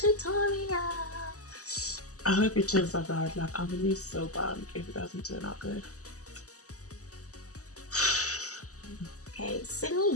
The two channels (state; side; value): late; right; 0.66 ms